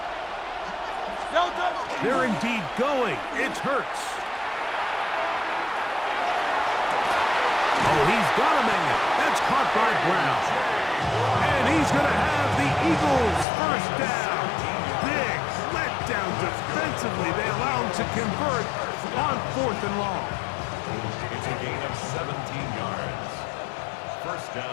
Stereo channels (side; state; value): right; drops out; at 13.5 s